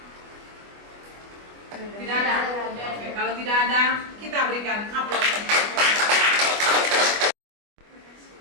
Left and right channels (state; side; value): late; left; 25 ms